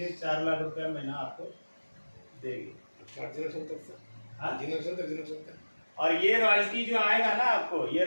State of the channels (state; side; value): inverted; both; correlation -1.00